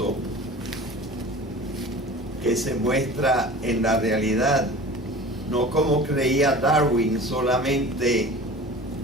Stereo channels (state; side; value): normal; both; correlation 0.39